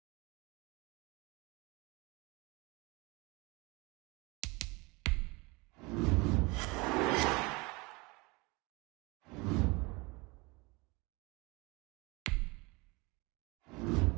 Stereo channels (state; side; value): quieter; left; 25.5 dB